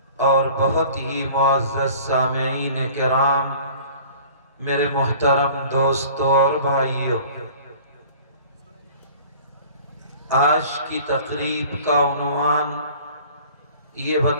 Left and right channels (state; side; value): inverted; both; correlation -0.47